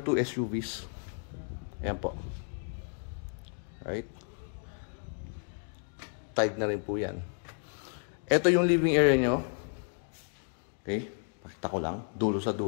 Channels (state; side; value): silent; right; 56 dB below the other